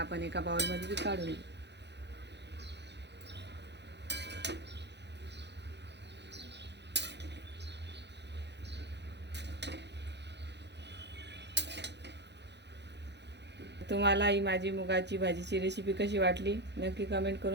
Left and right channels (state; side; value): late; left; 0.50 ms